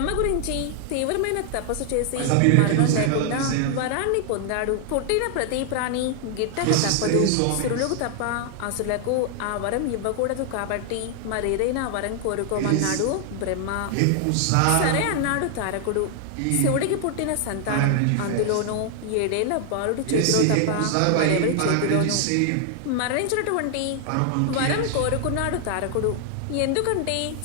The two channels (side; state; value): both; different; correlation 0.00